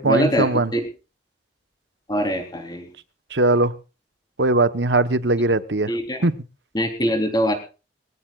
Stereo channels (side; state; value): both; normal; correlation 0.20